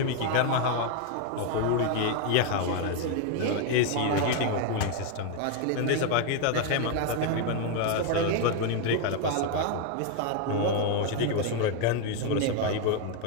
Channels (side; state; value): both; different; correlation 0.01